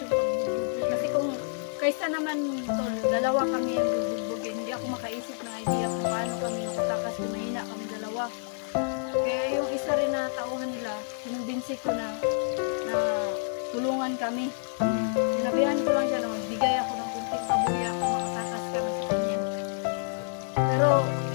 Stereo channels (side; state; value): right; silent; digital silence